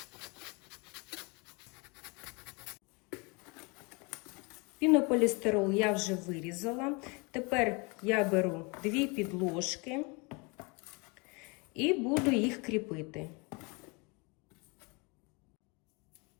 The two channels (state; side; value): quieter; right; 29.5 dB